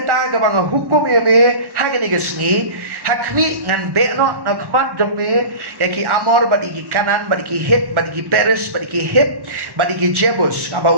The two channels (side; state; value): left; late; 1.1 ms